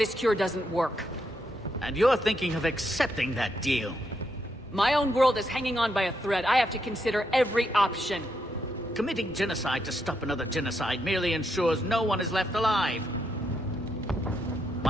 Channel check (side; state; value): both; normal; correlation 0.79